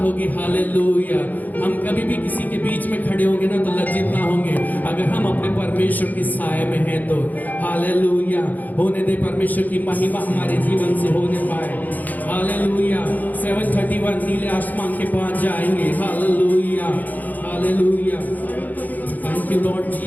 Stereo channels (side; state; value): right; late; 0.082 ms